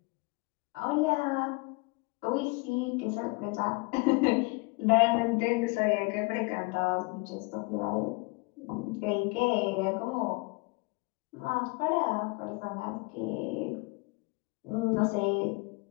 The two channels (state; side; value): quieter; right; 27.5 dB